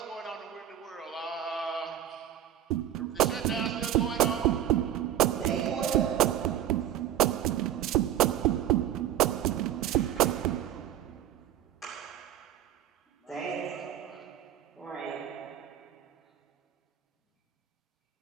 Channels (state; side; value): quieter; left; 11.0 dB